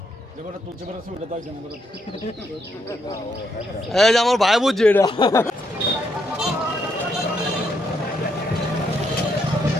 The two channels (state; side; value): normal; both; correlation 0.76